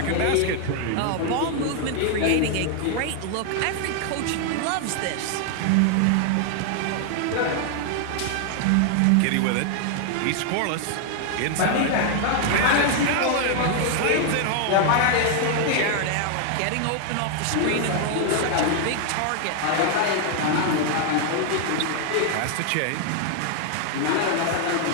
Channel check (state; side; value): different; both; correlation 0.00